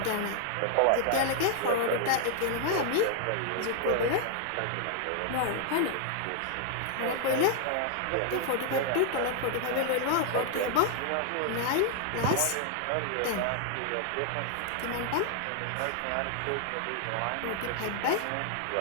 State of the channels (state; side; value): different; both; correlation 0.00